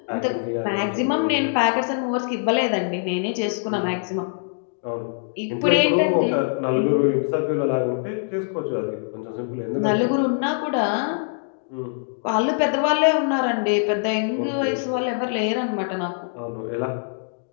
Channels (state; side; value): silent; right; digital silence